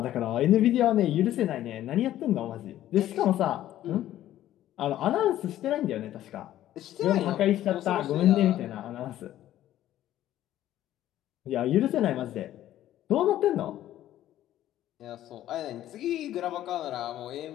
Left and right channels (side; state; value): right; quieter; 13.0 dB